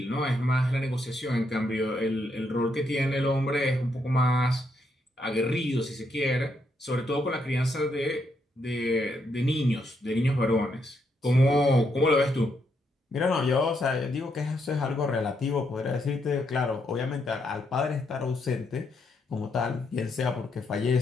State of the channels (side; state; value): both; normal; correlation 0.77